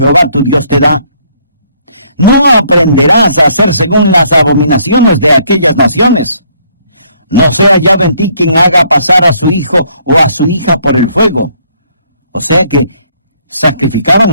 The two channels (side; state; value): both; inverted; correlation -0.66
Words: tu Dios te da, No aprenderás a hacer según las abominaciones de aquellas naciones. No sea hallado en ti quien haga pasar a su hijo o a su hija por el fuego. O sea que